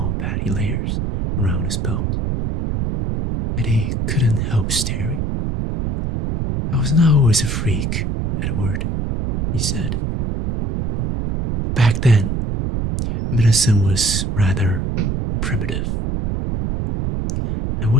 patty layers around his belt. And he couldn't help staring. "I was not always a freak, Edward," he said. "Back then, medicine was rather primitive. I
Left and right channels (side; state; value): right; noise; rumble, 1 dB below the sound